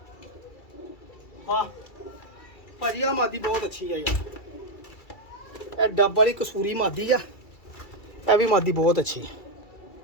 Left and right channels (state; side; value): late; right; 2.3 ms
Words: ਵਾਹ ਭਾਜੀ, ਆ ਮਾਦੀ ਬਹੁਤ ਅੱਛੀ ਆ ਯਾਰ। ਇਹ ਡੱਬ ਵਾਲੀ ਕਸੂਰੀ ਮਾਦੀ ਆ। ਇਹ ਵੀ ਮਾਦੀ ਬਹੁਤ ਅੱਛੀ।